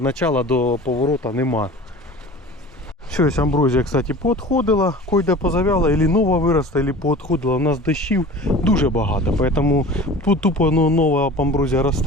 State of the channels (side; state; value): both; normal; correlation 0.39